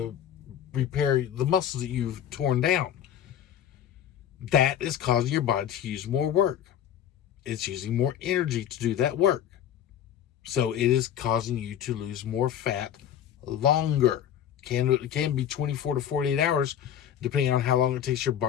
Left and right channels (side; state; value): right; quieter; 10.0 dB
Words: repair the muscles that you've torn down. That is causing your body to use more work. It's using more energy to do that work. So it is causing you to lose more fat longer. It can be 24 to 48 hours, depending on how long it takes your